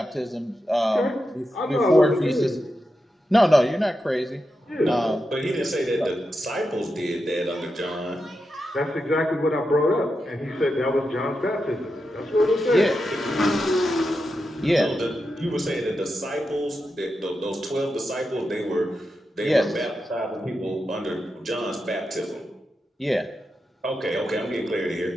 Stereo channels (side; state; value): both; normal; correlation 0.88